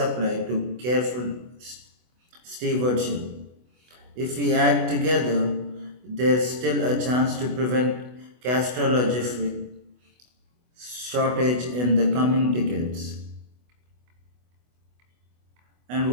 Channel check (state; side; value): late; left; 24 ms